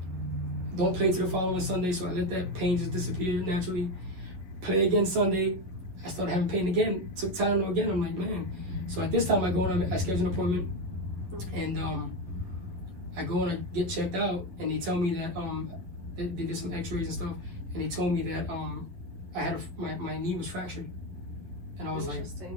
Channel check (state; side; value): late; left; 11 ms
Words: Don't play to the following Sunday, so I let that pain just disappear naturally. Play again Sunday. I started having pain again. Took Tylenol again. I'm like, man. So at this time, I schedule an appointment, and I go and I get checked out, and they tell me that they did some X-rays and stuff, and they told me that I had my knee was fractured, and I was like,